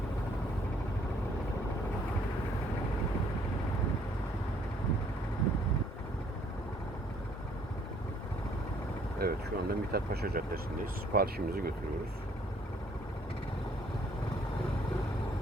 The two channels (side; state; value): both; normal; correlation 0.63